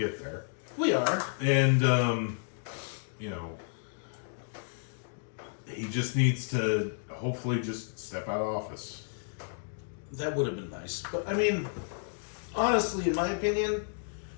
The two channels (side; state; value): right; silent; digital silence